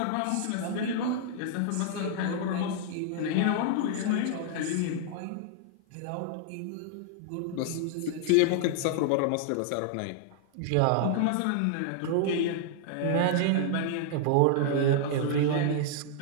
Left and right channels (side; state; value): both; different; correlation 0.00